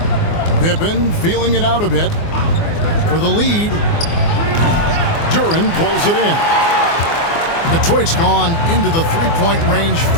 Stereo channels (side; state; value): right; late; 24 ms